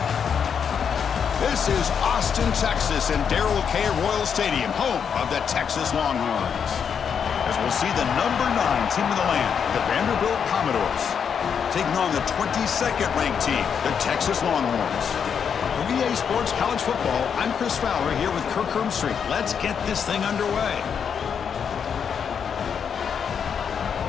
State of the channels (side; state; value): right; quieter; 7.2 dB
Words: This is Austin, Texas, and Darrell K. Royal Stadium, home of the Texas Longhorns. As we'll see the number 9 team in the land, the Vanderbilt Commodores, taking on the 22nd ranked team, the Texas Longhorns. For VA Sports College Football, I'm Chris Fowler here with Kirk Hermstreet. Let's get this thing underway.